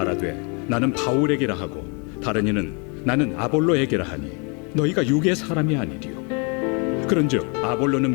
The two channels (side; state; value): right; quieter; 33.7 dB